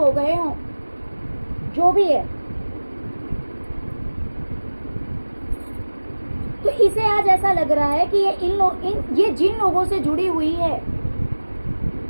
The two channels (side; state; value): both; inverted; correlation -1.00